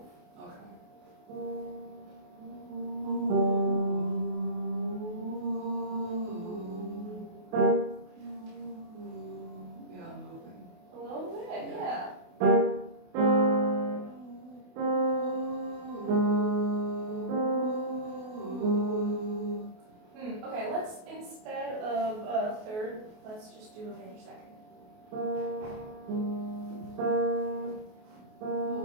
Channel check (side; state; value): left; late; 28 ms